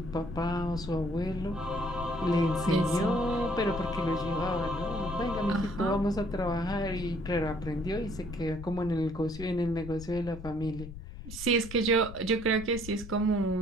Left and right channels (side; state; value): left; noise; rumble, 12 dB below the sound